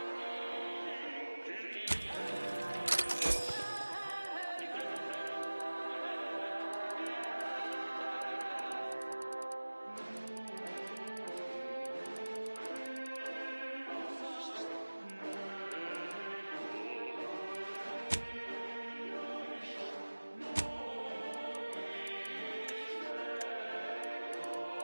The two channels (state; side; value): inverted; both; correlation -1.00